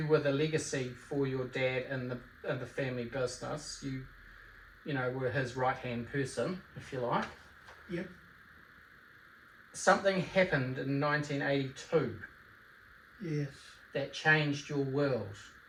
were the legacy for your dad in the family business. You were his right-hand person, if you like. Yep. Something happened in 1982 Yes. that changed your world.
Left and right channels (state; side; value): identical; both; correlation 1.00